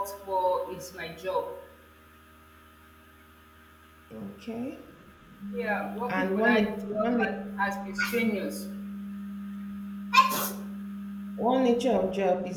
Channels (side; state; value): both; identical; correlation 1.00